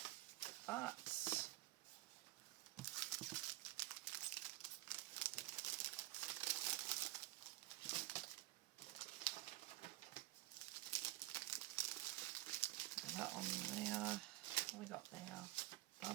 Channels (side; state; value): left; quieter; 18.2 dB